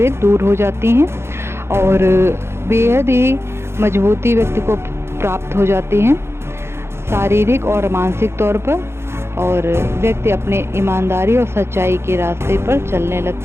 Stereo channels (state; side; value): late; left; 0.12 ms